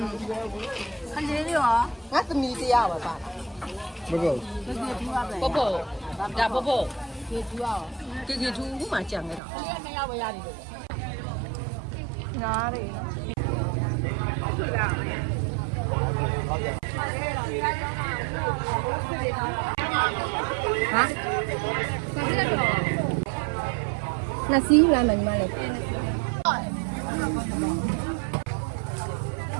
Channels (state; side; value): drops out; left; at 9.4 s